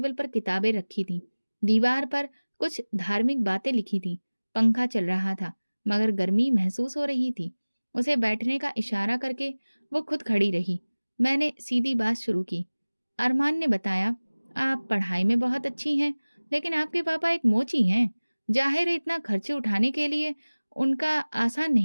पर किताबें रखी थीं। दीवार पर कुछ धार्मिक बातें लिखी थीं। पंखा चल रहा था, मगर गर्मी महसूस हो रही थी। उसे बैठने का इशारा करके वो खुद खड़ी रही। मैंने सीधी बात शुरू की। अरमान ने बताया, आप पढ़ाई में बहुत अच्छी हैं, लेकिन आपके पापा एक मोची हैं। जाहिर है इतना खर्चे उठाने के लिए उनका आसान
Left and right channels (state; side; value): inverted; both; correlation -1.00